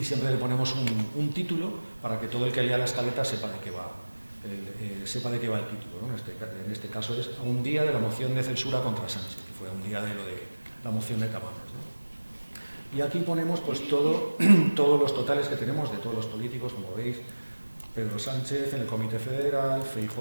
siempre le ponemos un título para que todo el que lea la escaleta sepa de qué va, el título, ¿no? En este caso es a un día de la moción de censura contra Sánchez, que fue a un día de lo de la moción de Tamames, ¿no? Y aquí ponemos pues todos los totales que tenemos de todos los políticos, como veis, Pedro Sánchez en el Comité Federal,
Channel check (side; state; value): both; inverted; correlation -1.00